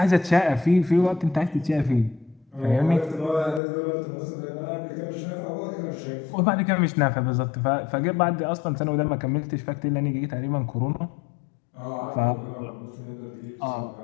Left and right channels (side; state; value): right; drops out; at 3.6 s